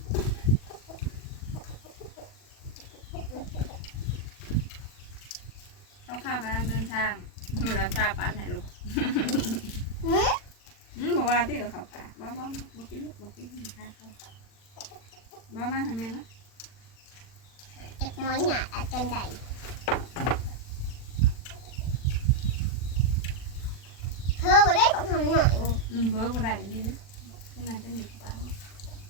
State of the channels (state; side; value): late; right; 40 ms